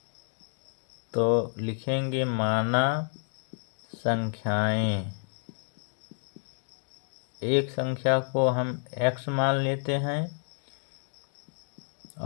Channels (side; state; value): right; silent; digital silence